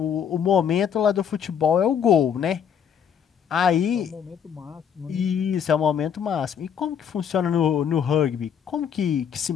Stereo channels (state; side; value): quieter; right; 8.0 dB